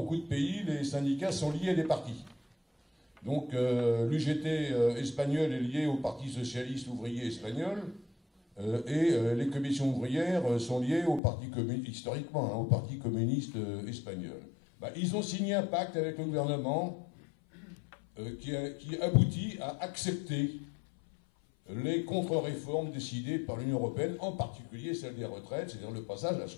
de pays, les syndicats sont liés à des partis. Donc l'UGT espagnol est lié au Parti socialiste ouvrier espagnol et les commissions ouvrières sont liées au Parti communiste, historiquement, hein, au Parti communiste espagnol. Ils ont signé un pacte avec le gouvernement qui aboutit à accepter les contre-réformes décidées par l'Union européenne, en particulier celle des retraites, c'est-à-dire le passage à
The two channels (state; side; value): drops out; right; at 11.2 s